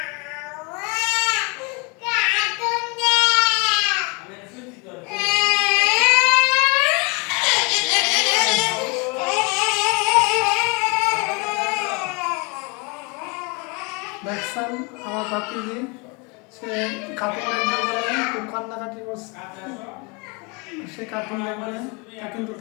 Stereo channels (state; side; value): quieter; right; 30.3 dB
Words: দেখছেন আমার ভাতিজি, সে কাপড় খুব কান্নাকাটি করছে। সে কার্টুন দেখবে, কিন্তু